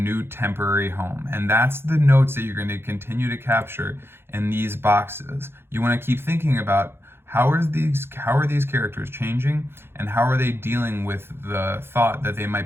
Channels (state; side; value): late; left; 0.11 ms